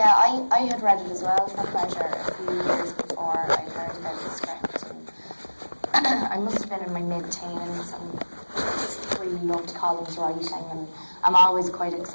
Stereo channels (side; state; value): both; inverted; correlation -1.00